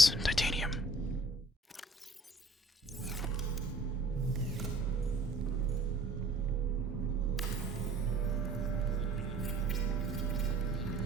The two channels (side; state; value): both; normal; correlation 0.53